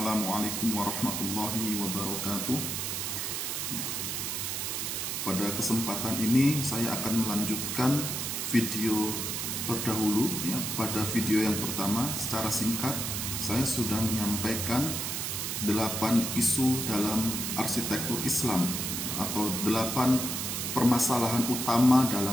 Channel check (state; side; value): noise; right; hiss, 2 dB below the sound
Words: warahmatullahi wabarakatuh. Ya, pada kesempatan ini saya akan melanjutkan video terdahulu. Ya, pada video yang pertama secara singkat saya sudah menyampaikan 8 isu dalam arsitektur Islam atau 8 permasalahan utama